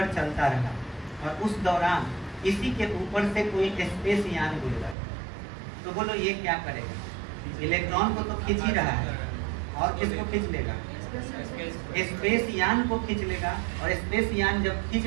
चलता रहा और उस दौरान इसी के ऊपर से कोई स्पेस यान गुजरा, तो बोलो ये क्या करेगा, इलेक्ट्रॉन को तो खींच ही रहा है, और किसको खींच लेगा, स्पेस यान को खींच लेगा। और स्पेस यान जब खींच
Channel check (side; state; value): left; drops out; at 5.0 s